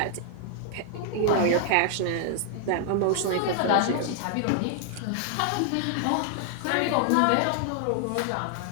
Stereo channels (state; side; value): different; both; correlation 0.00